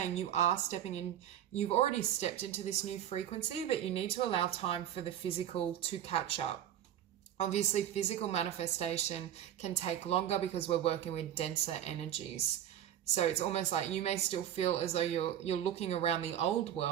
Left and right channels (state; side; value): quieter; left; 10.7 dB